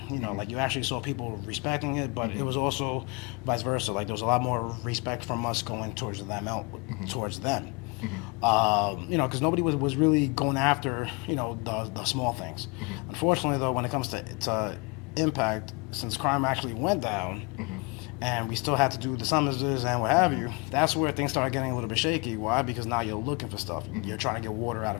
Like, you actually saw people respecting it, but it was also vice versa. Like, there was a lot more respect from us going towards them, because nobody was really going after, the small things. Unfortunately, though, when it comes to impact, since crime actually went down, and we still had to do the summonses and what have you, that's where things started getting a little bit shaky. Why? Because now you're looking for stuff. You're trying to get water out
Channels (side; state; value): right; quieter; 28.8 dB